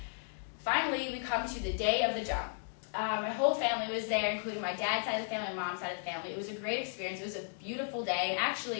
finally we come to the day of the jump. My whole family was there, including my dad's side of the family, my mom's side of the family. It was a great experience. It was a beautiful day, and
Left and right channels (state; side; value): silent; right; digital silence